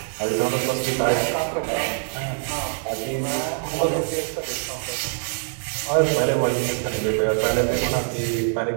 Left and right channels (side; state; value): left; silent; digital silence